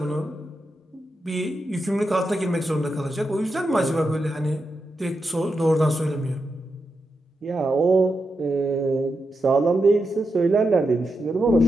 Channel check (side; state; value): both; normal; correlation 0.87